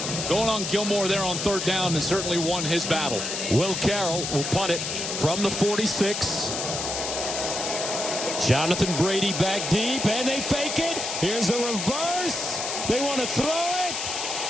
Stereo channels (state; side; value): noise; left; hiss, 3 dB below the sound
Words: going on Gilmore there on third down and certainly won his battle. Will Carroll will punt it from the 46. Jonathan Brady back deep, and they fake it. Here's a reverse. They want to throw it.